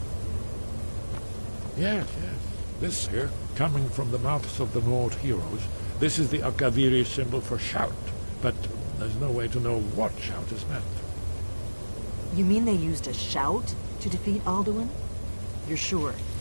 Yes. This here, coming from the mouths of the Nord heroes, this is the Akaviri symbol for shout, but there's no way to know what shout is meant. You mean they used a shout to defeat Alduin? You're sure?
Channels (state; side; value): inverted; both; correlation -1.00